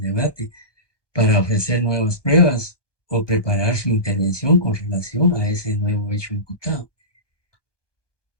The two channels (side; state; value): right; late; 1.1 ms